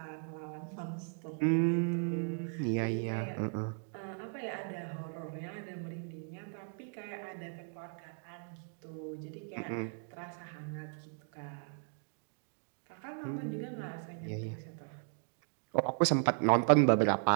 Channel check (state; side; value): silent; left; 53 dB below the other